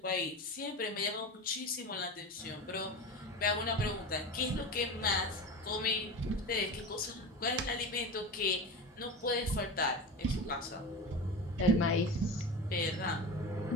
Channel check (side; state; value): both; normal; correlation 0.27